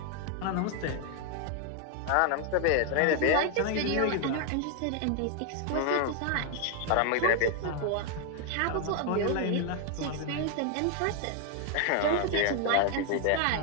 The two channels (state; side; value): different; both; correlation 0.00